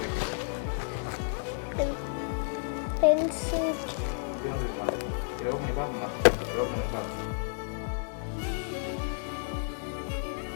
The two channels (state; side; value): silent; right; digital silence